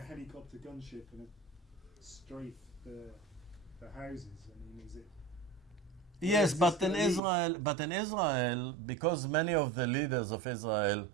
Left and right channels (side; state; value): left; drops out; at 7.2 s